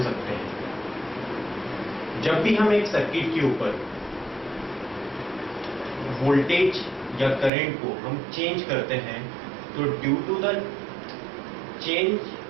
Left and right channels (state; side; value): drops out; left; at 7.5 s